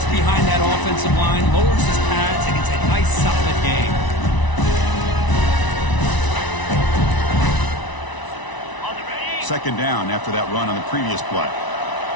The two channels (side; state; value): right; late; 1.0 ms